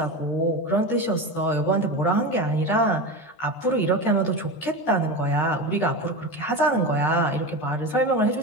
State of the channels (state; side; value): late; right; 13 ms